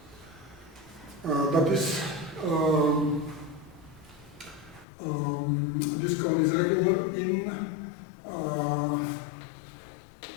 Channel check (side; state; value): right; drops out; at 4.9 s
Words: That is, this cone is regular in